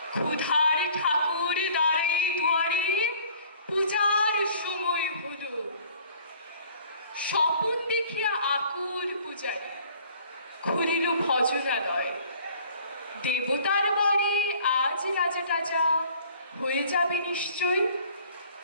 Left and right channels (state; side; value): inverted; both; correlation -0.53